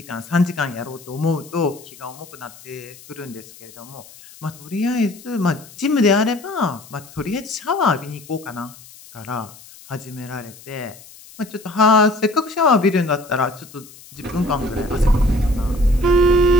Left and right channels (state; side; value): noise; left; hiss, 21 dB below the sound